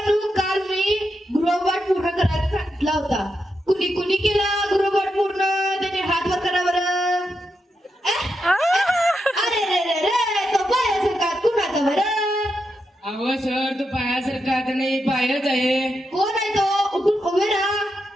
काल मी गृहपाठ पूर्ण करायला सांगितला होता. कुणी कुणी केला गृहपाठ पूर्ण? त्याने हात वर करा बरं. अरे रे रे रे तो पायासारखा कुणाचा बरं? अहो सर तो पायासारखा आता नाही, पायच आहे. कोण आहे तो? उठून उभे राहा.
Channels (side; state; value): both; normal; correlation 0.85